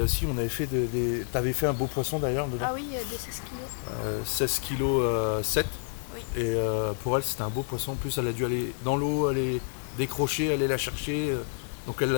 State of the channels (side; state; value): right; silent; digital silence